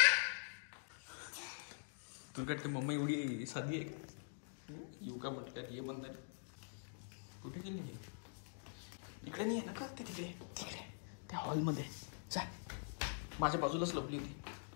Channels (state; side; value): silent; right; digital silence